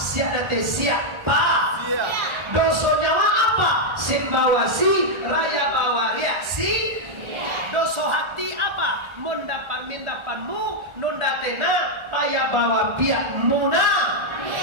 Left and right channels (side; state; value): left; late; 1.3 ms